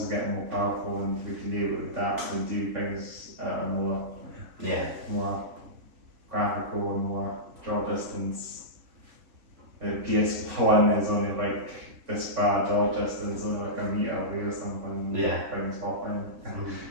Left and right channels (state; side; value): late; left; 3.5 ms